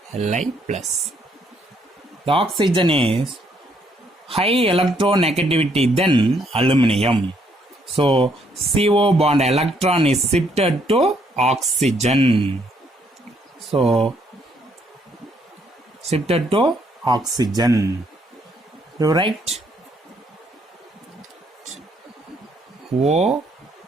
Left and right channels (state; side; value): normal; both; correlation 0.70